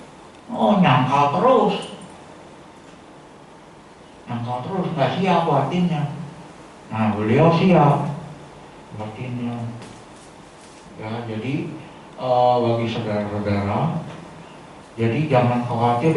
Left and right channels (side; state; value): both; identical; correlation 1.00